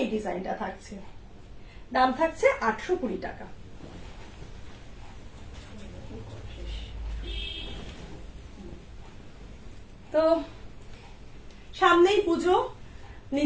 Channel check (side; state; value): both; identical; correlation 1.00